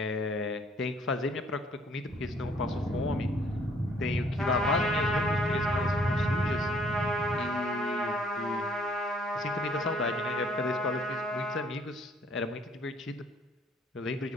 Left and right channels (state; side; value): normal; both; correlation 0.62